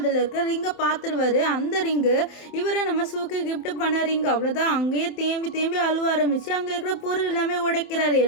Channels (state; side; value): late; right; 27 ms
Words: இருக்க ரிங்கை பார்த்துருவாரு. அந்த ரிங்கு இவரை நம்ம சூக்கு கிஃப்ட் பண்ண ரிங். அவ்வளோதான். அங்கேயே தேம்பி அழுவ ஆரம்பிச்சு அங்கே இருக்கிற பொருள் எல்லாமே உடைக்கிறாரு.